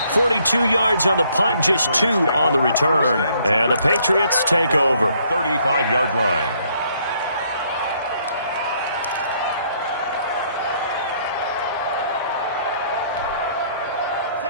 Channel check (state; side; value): inverted; both; correlation -0.67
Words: .42 yards on the punt, just 2 on the return. And the Patriots take over. 35-yard line.